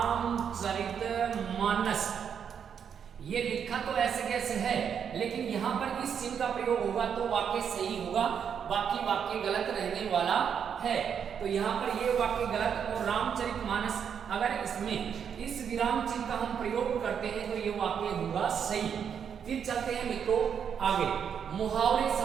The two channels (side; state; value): left; quieter; 7.6 dB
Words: ये लिखा तो ऐसे कैसे है, लेकिन यहाँ पर इस चिन्ह का प्रयोग होगा तो वाक्य सही होगा, बाकी वाक्य गलत रहने वाला है। तो यहाँ पर ये वाक्य गलत, और रामचरितमानस अगर इसमें इस विराम चिन्ह का हम प्रयोग करते हैं तो ये वाक्य होगा सही। फिर चलते हैं मित्रों आगे, मुहावरे